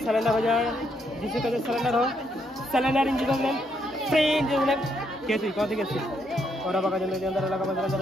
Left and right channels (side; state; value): both; normal; correlation 0.75